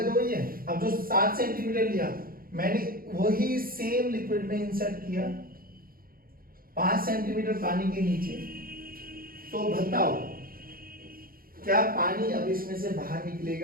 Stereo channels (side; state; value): left; late; 0.42 ms